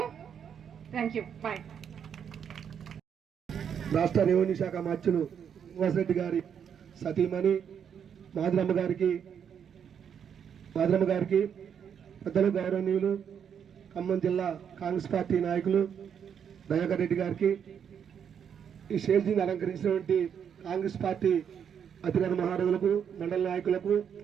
Thank you. Bye. రాష్ట్ర రెవెన్యూ శాఖ మంత్రులు శ్రీనివాసరెడ్డి గారి సతీమణి మాధురమ్మ గారికి పెద్దలు, గౌరవనీయులు, ఖమ్మం జిల్లా కాంగ్రెస్ పార్టీ నాయకులు, దయాకర్ రెడ్డి గారికి, ఈ స్టేజీని అలంకరించినటువంటి కాంగ్రెస్ పార్టీ అధికార మహారాజులకు, మండల నాయకులకు,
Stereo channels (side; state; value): left; quieter; 8.0 dB